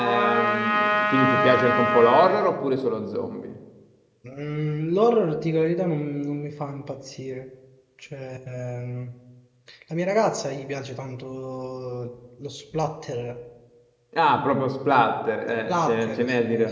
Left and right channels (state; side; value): identical; both; correlation 1.00